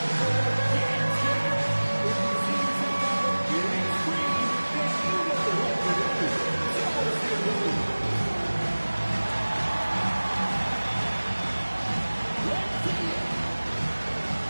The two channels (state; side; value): inverted; both; correlation -1.00